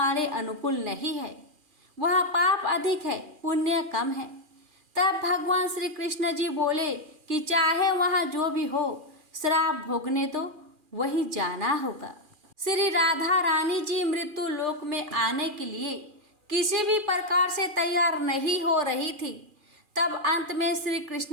अनुकूल नहीं है, वह पाप अधिक है, पुण्य कम है। तब भगवान श्री कृष्ण जी बोले कि चाहे वहाँ जो भी हो, श्राप भोगने तो वहीं जाना होगा। श्री राधा रानी जी मृत्यु लोक में आने के लिए किसी भी प्रकार से तैयार नहीं हो रही थी। तब अंत में श्री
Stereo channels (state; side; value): late; left; 2.4 ms